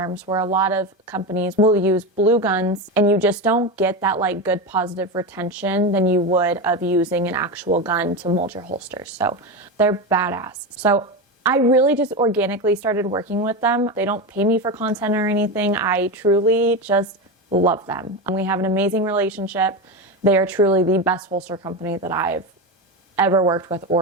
where a lot of companies will use blue guns and you just don't get that like good positive retention than you would of using an actual gun to mold your holsters. So they're badass. So I really just organically started working with them. They don't pay me for content or anything. I truly just love them. And we have an amazing relationship. They are truly the best holster company that I've ever worked with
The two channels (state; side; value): normal; both; correlation 0.18